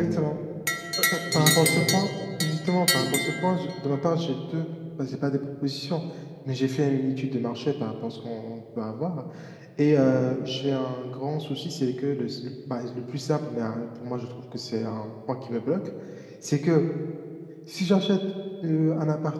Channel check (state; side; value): identical; both; correlation 1.00